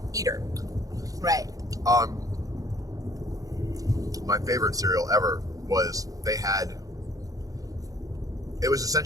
eater. Right. My favorite cereal ever was it was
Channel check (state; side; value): late; left; 0.17 ms